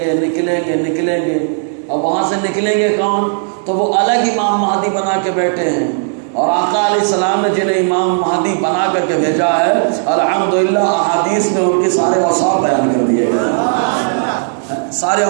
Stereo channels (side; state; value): left; silent; digital silence